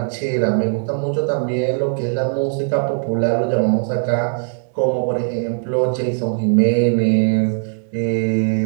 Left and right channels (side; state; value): left; silent; digital silence